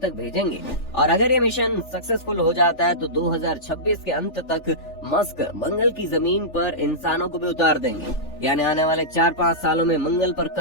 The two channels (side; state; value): right; late; 3.4 ms